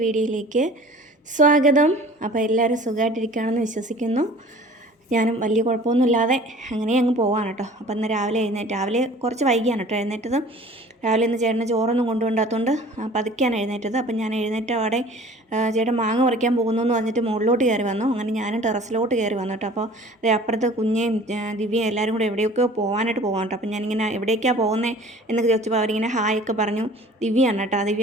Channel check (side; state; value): both; normal; correlation 0.47